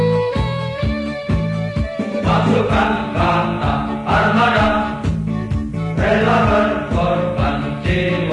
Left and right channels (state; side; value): identical; both; correlation 1.00